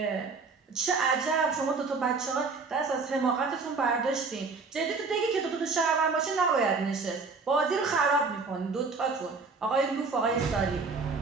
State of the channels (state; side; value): quieter; left; 4.3 dB